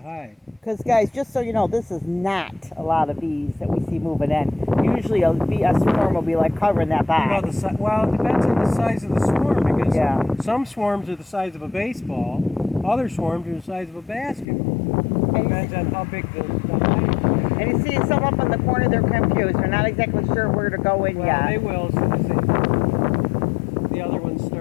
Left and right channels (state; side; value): drops out; right; at 14.5 s